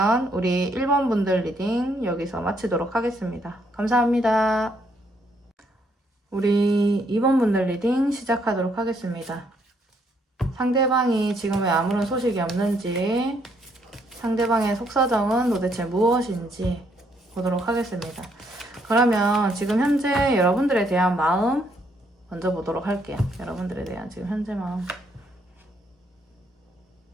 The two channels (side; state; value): both; normal; correlation 0.72